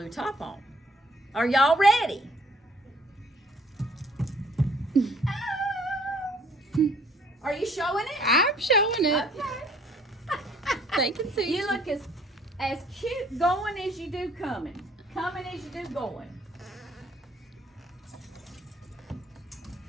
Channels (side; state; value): both; normal; correlation 0.60